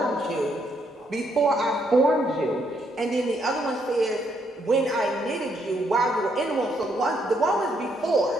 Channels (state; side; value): normal; both; correlation 0.73